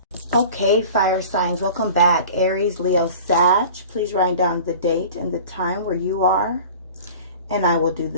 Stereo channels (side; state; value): both; inverted; correlation -0.41